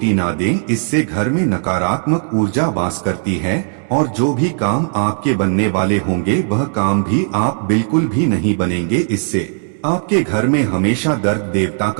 ना दें, इससे घर में नकारात्मक ऊर्जा वास करती है और जो भी काम आपके बनने वाले होंगे वह काम भी आप बिल्कुल भी नहीं बनेंगे। इससे आपके घर में हमेशा दर्द देवता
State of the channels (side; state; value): left; silent; digital silence